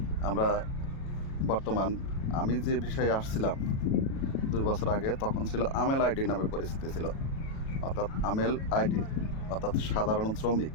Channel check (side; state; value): right; late; 37 ms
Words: আমরা বর্তমান আমি যে বিষয়ে আসছিলাম 2 বছর আগে, তখন ছিল আমেল আইডি নামে পরিচিতি ছিল, অর্থাৎ আমেল আইডি অর্থাৎ সাধারণ শ্রমিক।